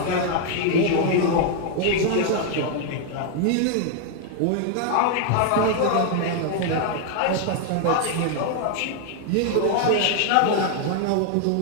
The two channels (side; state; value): both; different; correlation 0.00